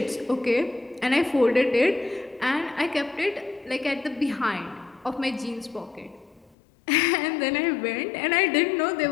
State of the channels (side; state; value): right; drops out; at 6.6 s